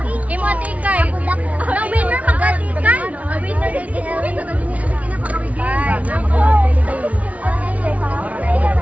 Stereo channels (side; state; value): left; late; 0.068 ms